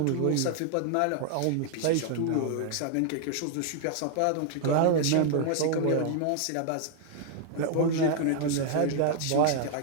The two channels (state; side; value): different; both; correlation 0.00